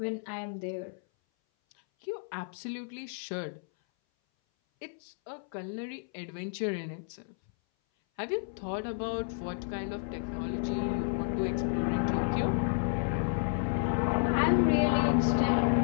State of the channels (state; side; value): silent; right; 57 dB below the other